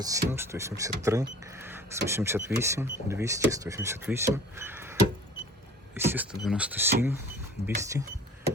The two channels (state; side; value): normal; both; correlation 0.46